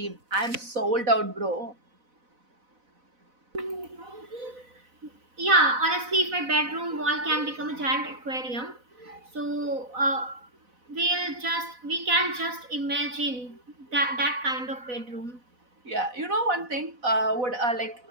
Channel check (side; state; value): left; late; 4.0 ms